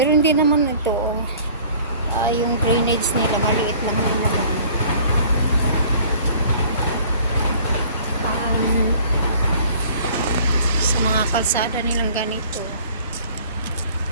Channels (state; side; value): inverted; both; correlation -0.51